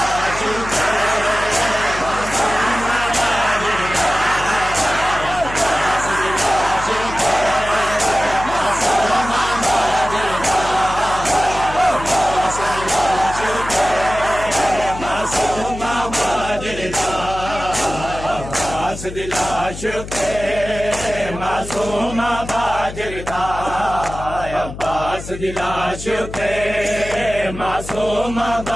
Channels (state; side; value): noise; left; hum, 11 dB below the sound